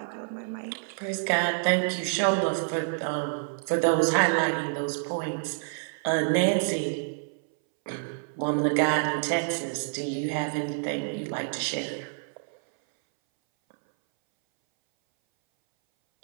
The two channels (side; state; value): left; silent; 59 dB below the other